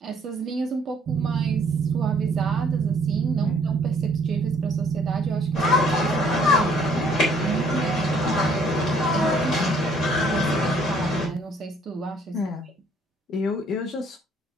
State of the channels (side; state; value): both; normal; correlation 0.62